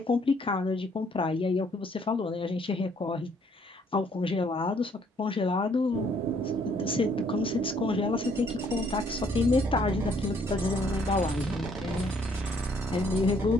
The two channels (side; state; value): both; normal; correlation 0.65